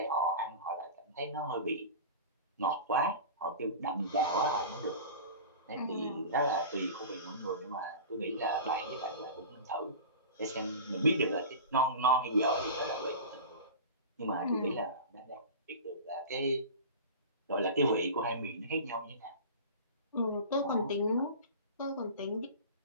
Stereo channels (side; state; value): both; inverted; correlation -0.33